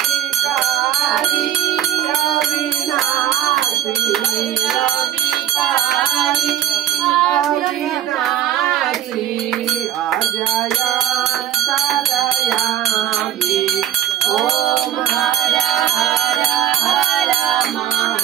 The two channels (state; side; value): quieter; left; 11.0 dB